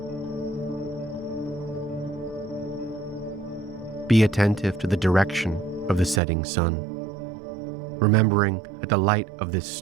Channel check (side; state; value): left; drops out; at 6.2 s